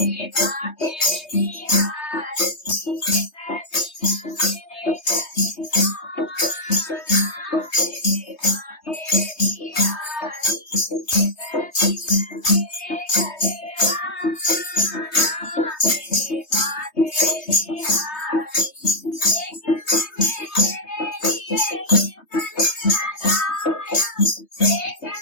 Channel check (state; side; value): late; right; 3.2 ms